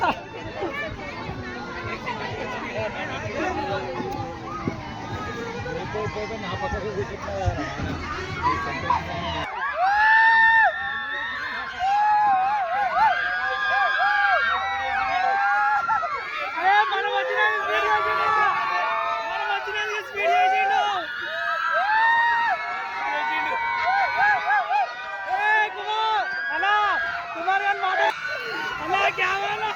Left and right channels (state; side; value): identical; both; correlation 1.00